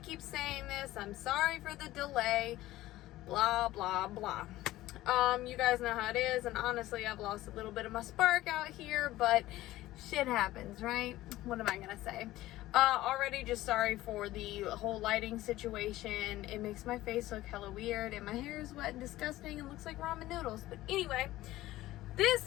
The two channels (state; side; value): quieter; right; 16.2 dB